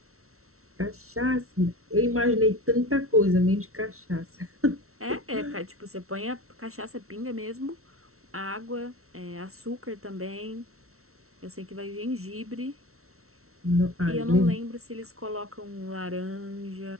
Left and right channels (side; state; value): left; late; 0.63 ms